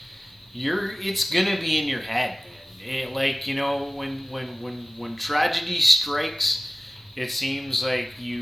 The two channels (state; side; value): normal; both; correlation 0.96